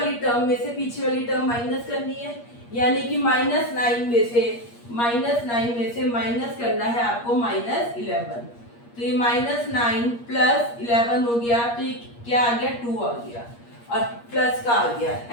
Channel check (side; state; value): right; late; 8.5 ms